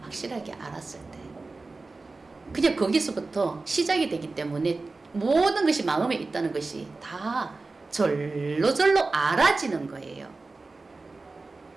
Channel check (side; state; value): left; quieter; 3.6 dB